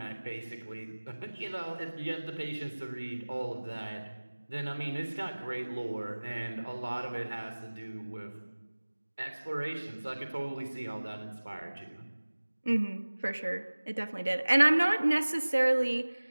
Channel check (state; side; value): inverted; both; correlation -1.00